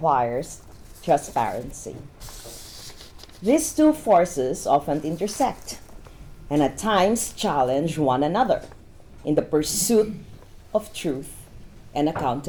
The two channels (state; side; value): identical; both; correlation 1.00